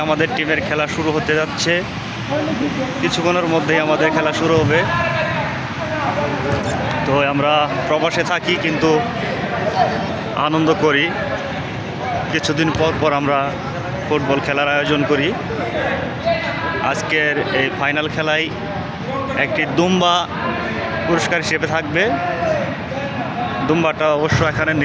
আমাদের টিমের খেলা শুরু হতে যাচ্ছে। কিছুক্ষণের মধ্যেই আমাদের খেলা শুরু হবে। তো আমরা প্রবাসে থাকি কিন্তু আনন্দ করি। কিছুদিন পর পর আমরা ফুটবল খেলার আয়োজন করি। আজকের এই ফাইনাল খেলায় একটি দুম্বা পুরস্কার হিসেবে থাকবে। দুম্বাটা অবশ্য এখানে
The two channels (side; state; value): both; identical; correlation 1.00